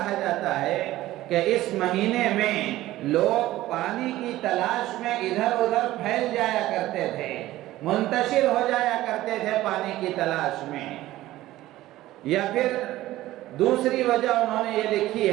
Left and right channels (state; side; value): quieter; left; 15.8 dB